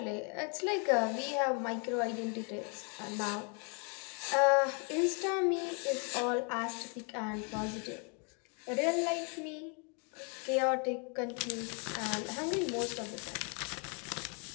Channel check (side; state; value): right; quieter; 36.8 dB